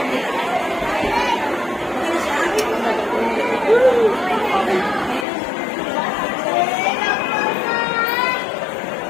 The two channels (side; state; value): right; drops out; at 5.2 s